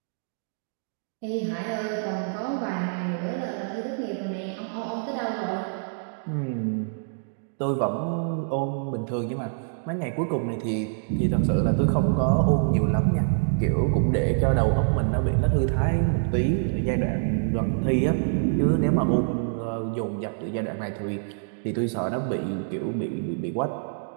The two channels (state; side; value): silent; left; digital silence